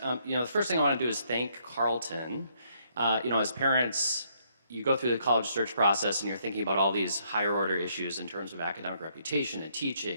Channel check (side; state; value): both; inverted; correlation -0.71